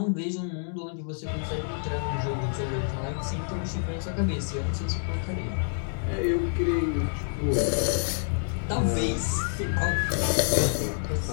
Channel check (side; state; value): right; silent; digital silence